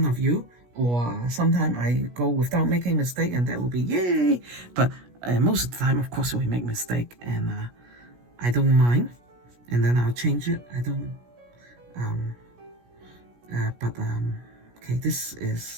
of you, or sometimes I go without making mistake, and that will be yay. But most of the time, of course, we make mistake, and I don't mind, and then I'll change it. I don't, okay, this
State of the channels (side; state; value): left; late; 17 ms